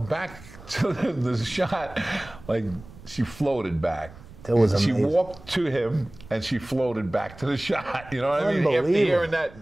the shot like she floated back. She walked to him and she floated back to the shot. You know what I mean? After hearing that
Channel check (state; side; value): noise; right; rumble, 19 dB below the sound